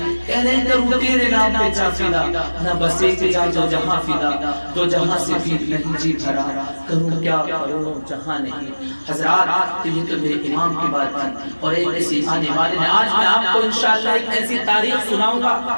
کہہ رہے ہیں کروں تیرے نام پہ جا فدا، نہ بس ایک جا جو جہاں فدا، تو جہاں سے بھی نہیں جی بھرا، کروں کیا کروں جہاں نہیں۔ حضرات یہ تو میرے امام کی بات تھی، اور ایک ایسی آنے والے نے آج میں آپ کو انشاءاللہ ایک ایسی تاریخ سناؤں گا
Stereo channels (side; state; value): both; inverted; correlation -1.00